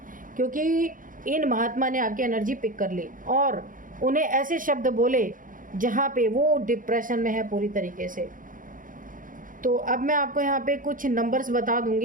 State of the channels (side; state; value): left; late; 0.39 ms